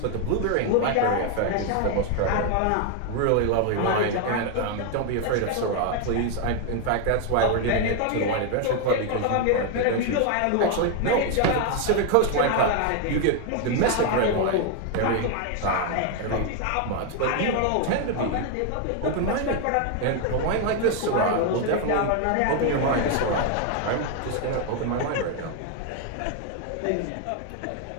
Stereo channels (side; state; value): both; different; correlation 0.01